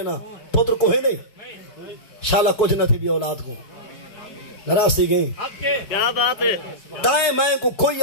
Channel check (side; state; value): right; late; 4.6 ms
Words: پتر کوہ نہیں شالا کچھ نہ تھی بھی اولاد کو نراسی گئی کیا بات ہے دائیں میں کو کوئی